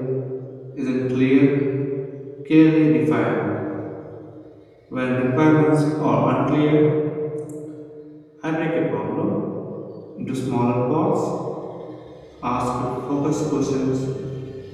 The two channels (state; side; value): identical; both; correlation 1.00